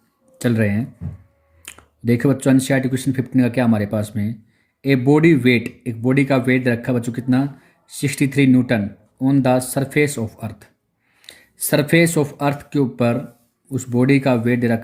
चल रहे हैं। देखो बच्चों, एनसीईआरटी क्वेश्चन 15 का क्या हमारे पास में ए बॉडी वेट, एक बॉडी का वेट रखा बच्चों कितना 63 Newton on the surface of earth. Surface of earth के ऊपर उस बॉडी का वेट दे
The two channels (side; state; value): both; identical; correlation 1.00